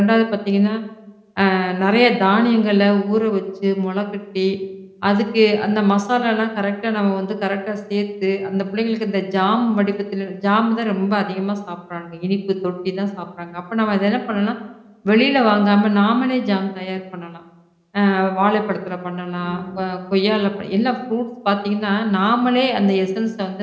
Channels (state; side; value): identical; both; correlation 1.00